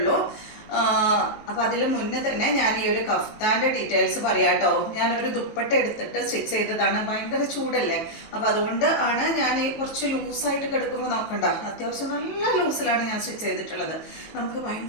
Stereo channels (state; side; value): late; right; 19 ms